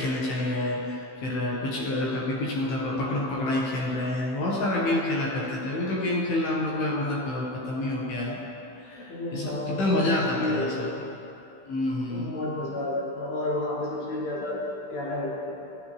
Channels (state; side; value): late; right; 15 ms